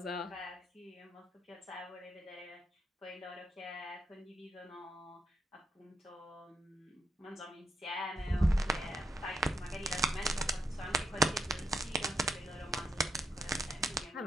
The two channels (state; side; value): normal; both; correlation 0.80